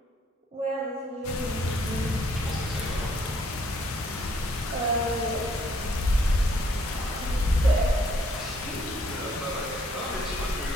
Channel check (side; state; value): both; normal; correlation 0.66